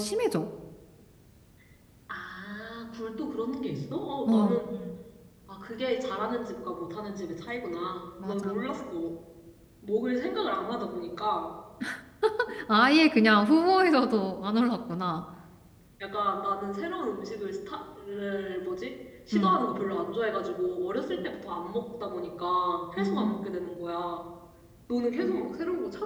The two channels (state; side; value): identical; both; correlation 1.00